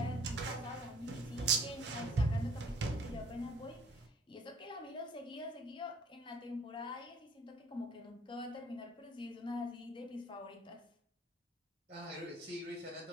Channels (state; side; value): normal; both; correlation 0.54